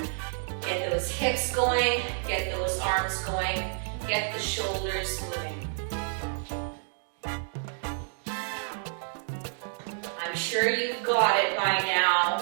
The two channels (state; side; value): silent; left; digital silence